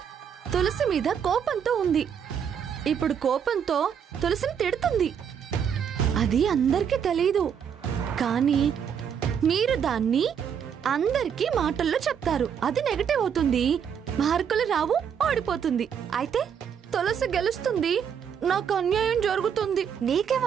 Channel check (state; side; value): quieter; left; 7.8 dB